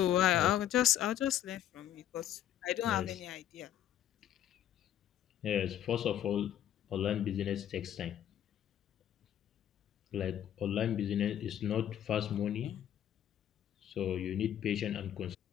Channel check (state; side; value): quieter; right; 11.0 dB